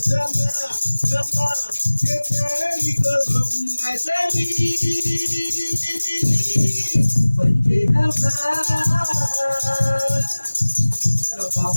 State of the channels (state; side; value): inverted; both; correlation -1.00